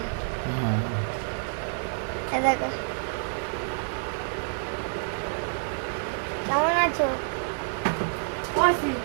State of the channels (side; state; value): left; silent; digital silence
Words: এ দেখো কেমন আছো?